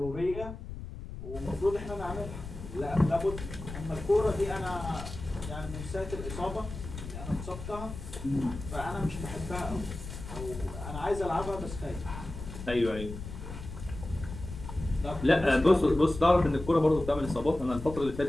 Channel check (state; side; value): noise; left; rumble, 10 dB below the sound